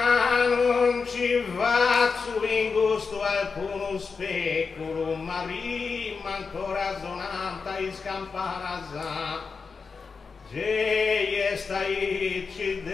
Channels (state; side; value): quieter; right; 5.0 dB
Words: non ci faccio in gusto alcuno specchio, ma prima ancora sonanta e scampana e staici